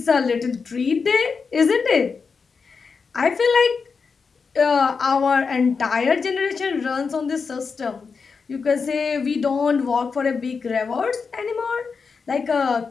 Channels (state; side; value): quieter; right; 5.2 dB